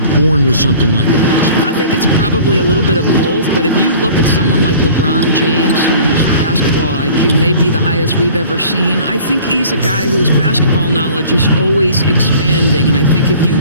born with something like that? I think it's probably a little bit of both, but if you look at someone like LeBron James, whose basketball IQ may be the highest we've ever seen, I think he's a guy whose basketball knowledge is always expanding, and I think if you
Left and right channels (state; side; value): inverted; both; correlation -0.47